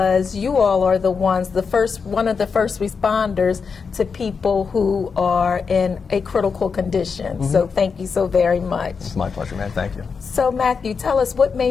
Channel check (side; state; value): right; quieter; 5.5 dB